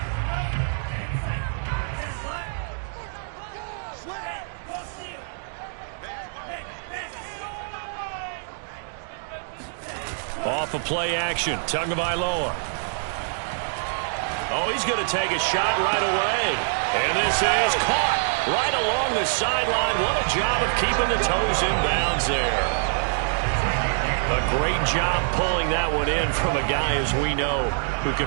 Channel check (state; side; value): silent; left; digital silence